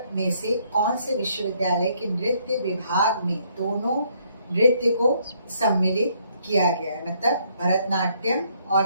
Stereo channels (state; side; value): inverted; both; correlation -0.69